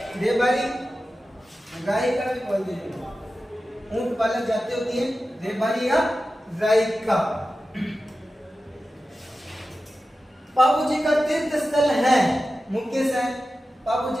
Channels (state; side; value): normal; both; correlation 0.93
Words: रेबारी रायका भी बोलते हैं। ऊंट पालक जाति होती है रेबारी या रायका। बाबू जी का तीर्थ स्थल है मुख्य से। बाबू